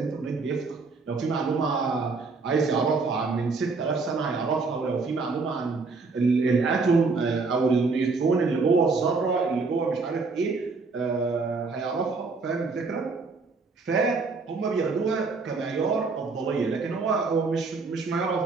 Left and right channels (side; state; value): left; quieter; 4.2 dB